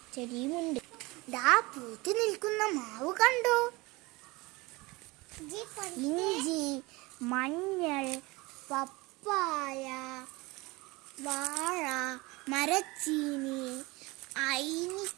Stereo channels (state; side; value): quieter; left; 23.2 dB